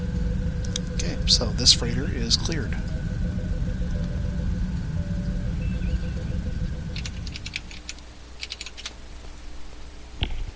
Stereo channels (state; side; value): identical; both; correlation 1.00